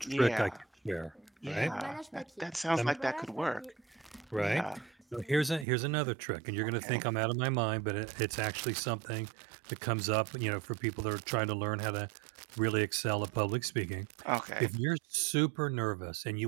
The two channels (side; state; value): left; drops out; at 5.7 s